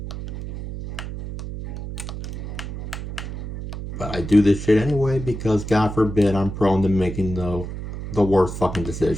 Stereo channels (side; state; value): right; noise; hum, 8 dB below the sound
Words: But I do this shit anyway because God forbid I'm prone to making the worst fucking